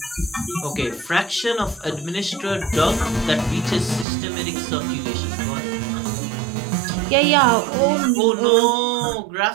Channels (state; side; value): drops out; left; at 4.0 s